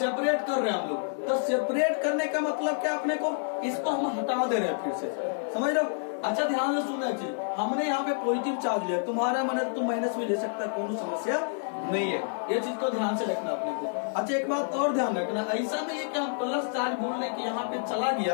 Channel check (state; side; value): silent; right; 59 dB below the other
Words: कर रहे हैं हम लोग। तो सेपरेट करने का मतलब क्या अपने को? इसको हम हटा दे रहे हैं फिर से, समझ रहे हो। अच्छा ध्यान से सुनना चाहिए, हमने यहाँ पे पॉजिटिव चार्ज लिया, तुम्हारा मन है तुम माइनस में ले सकता है, कोई समस्या नहीं है। ये चीज को ध्यान से रखना अपने को। अच्छा एक बात और ध्यान रखना, ऐसा नहीं है कि हम प्लस चार्ज बोलने की यहाँ पे चला